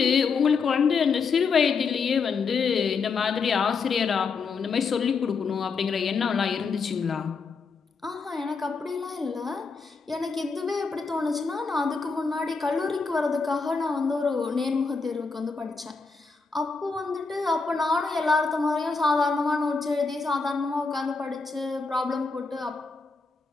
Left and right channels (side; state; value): right; quieter; 4.8 dB